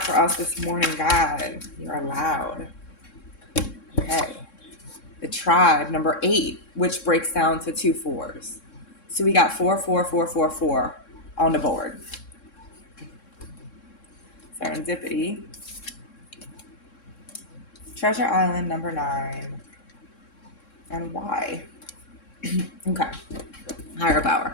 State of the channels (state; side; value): late; right; 3.7 ms